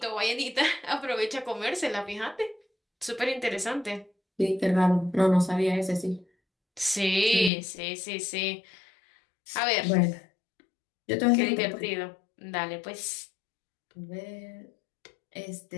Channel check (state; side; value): drops out; right; at 7.5 s